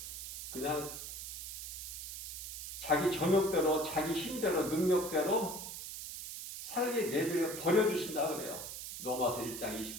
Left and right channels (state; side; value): noise; right; hiss, 8 dB below the sound